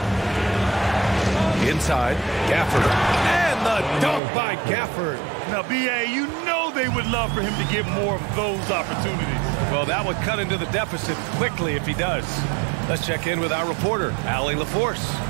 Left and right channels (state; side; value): drops out; left; at 4.2 s